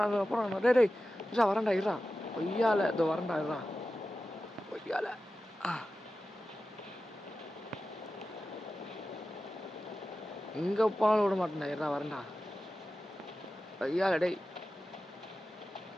டேய் வரண்டா இருடா. ஒய்யால இதோ வரண்டா இருடா. ஒய்யால இங்கே போனாலும் விட மாட்டேன்டா. இருடா வரண்டா. ஒய்யால டேய்.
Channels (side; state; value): both; normal; correlation 0.94